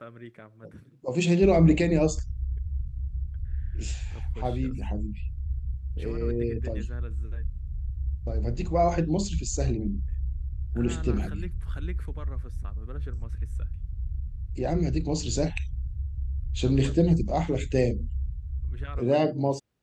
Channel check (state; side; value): identical; both; correlation 1.00